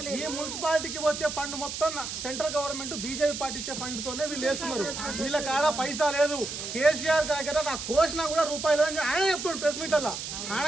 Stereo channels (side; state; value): right; noise; hiss, 6 dB below the sound